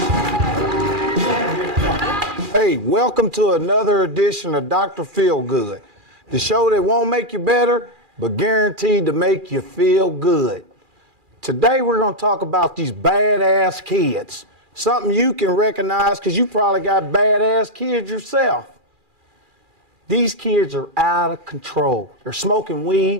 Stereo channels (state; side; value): late; left; 2.4 ms